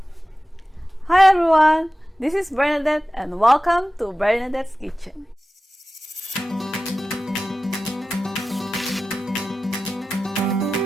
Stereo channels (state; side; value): normal; both; correlation 0.95